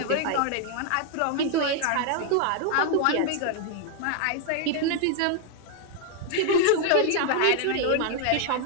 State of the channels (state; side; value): different; both; correlation 0.00